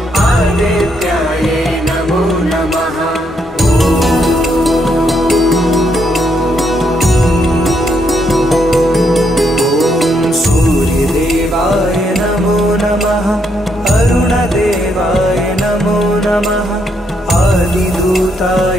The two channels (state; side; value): normal; both; correlation 0.76